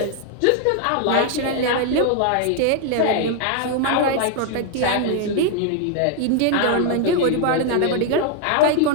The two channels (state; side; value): different; both; correlation 0.00